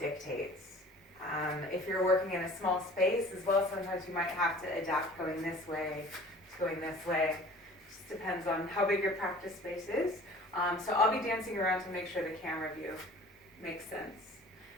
If you're working in a small space as well, sometimes you might have to adapt going this way to going this way. Just depends on how big your practice space is. So I'll be dancing around to make sure the camera view makes sense.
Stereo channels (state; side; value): normal; both; correlation 0.46